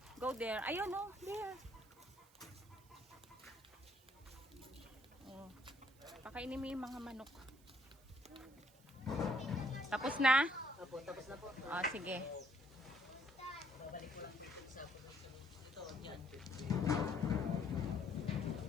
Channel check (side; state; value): right; noise; hiss, 27 dB below the sound